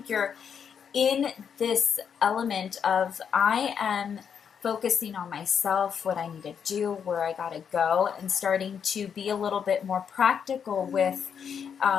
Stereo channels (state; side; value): quieter; right; 7.4 dB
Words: you're in this element of, I am focusing on myself, what I need to do, where I gotta go, and starting to be a little bit more practical with